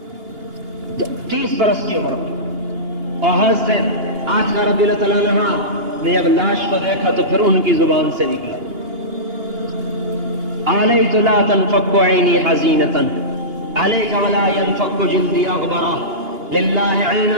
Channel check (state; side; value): late; left; 2.8 ms